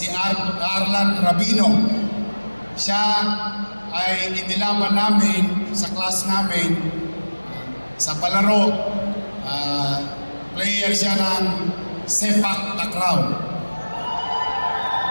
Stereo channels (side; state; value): both; inverted; correlation -1.00